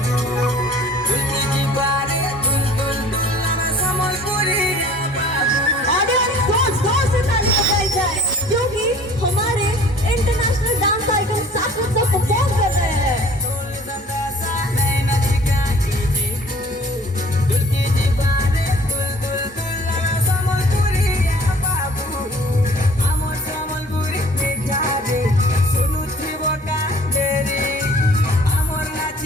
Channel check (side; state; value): both; normal; correlation 0.51